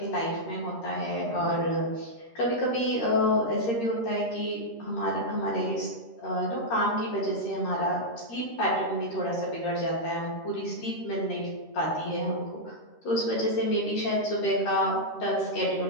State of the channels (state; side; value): late; right; 13 ms